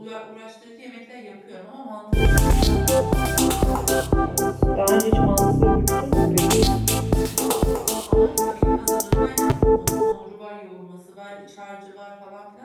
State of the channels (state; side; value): identical; both; correlation 1.00